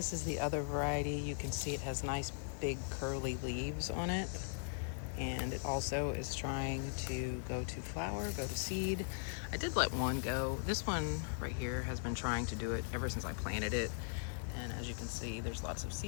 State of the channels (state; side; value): silent; right; digital silence